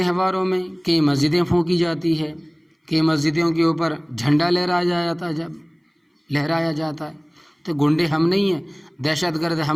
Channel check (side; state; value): both; identical; correlation 1.00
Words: میں کئی مسجدیں پھونکی جاتی ہے، کئی مسجدوں کے اوپر جھنڈا لہرایا جاتا ہے۔ تو گنڈے ہم نہیں ہیں، دہشت گرد